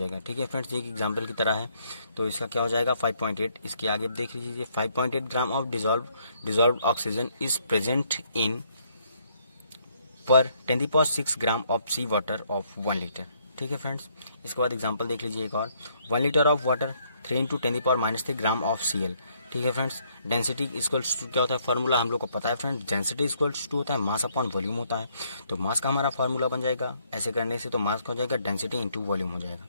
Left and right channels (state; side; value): inverted; both; correlation -0.69